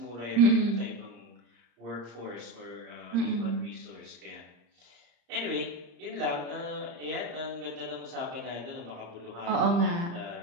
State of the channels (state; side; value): late; left; 35 ms